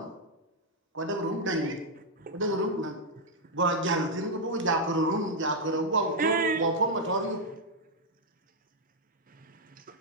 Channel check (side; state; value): both; normal; correlation -0.02